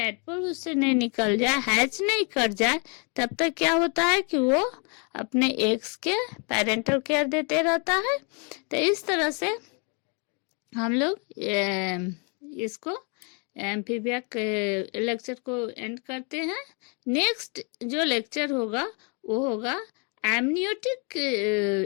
उससे नहीं निकल जाए, हैच नहीं कर जाए, तब तक क्या होता है कि वो अपने एग्स के पेरेंटल केयर देते रहता है। तो इस तरह से हम लोग इसको एम्फीबिया के लेक्चर को एंड करते हैं। नेक्स्ट जो लेक्चर होगा वो होगा एमनियोटिक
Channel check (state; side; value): quieter; right; 35.4 dB